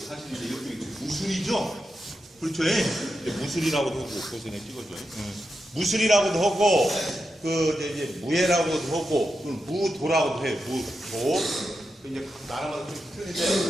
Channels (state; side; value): normal; both; correlation 0.88